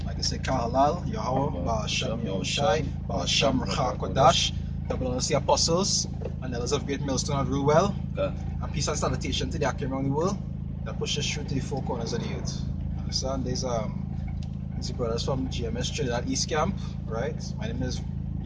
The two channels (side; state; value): both; identical; correlation 1.00